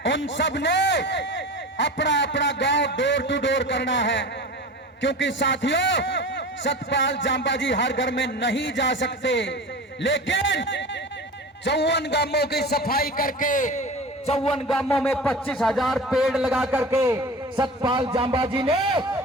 उन सब ने अपना अपना गांव डोर टू डोर करना है, क्योंकि साथियों सतपाल जांबाजी हर घर में नहीं जा सकते, लेकिन 54 गांवों की सफाई करके 54 गांवों में 25,000 पेड़ लगा करके सतपाल जांबाजी ने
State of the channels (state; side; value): normal; both; correlation 0.34